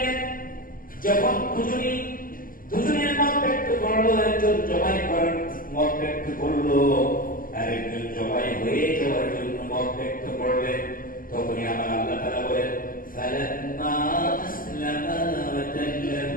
যখন দুজনের মত ব্যক্ত করলো, একজন জবাই করার মত ব্যক্ত করলো, আর একজন জবাই হয়ে যাওয়ার জন্য মত ব্যক্ত করলেন, তখনই আমার আল্লাহ তাআলা বলেন ফালাম্মা আসলামা ওয়া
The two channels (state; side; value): late; right; 0.41 ms